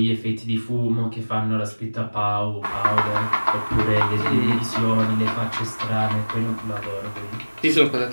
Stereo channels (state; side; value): inverted; both; correlation -1.00